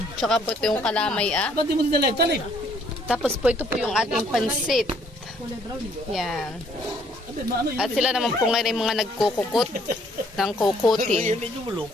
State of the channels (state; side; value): normal; both; correlation 0.64